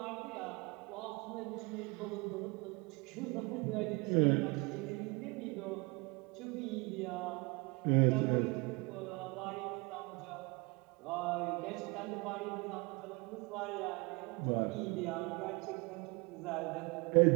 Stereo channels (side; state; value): left; quieter; 27.6 dB